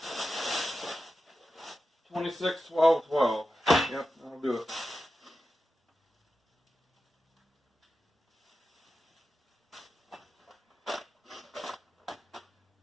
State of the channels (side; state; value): both; normal; correlation 0.92